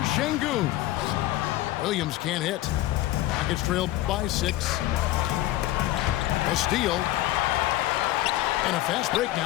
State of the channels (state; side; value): quieter; right; 15.9 dB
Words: Şengün. Williams can't hit. Rockets trail by 6. A steal. And a fast break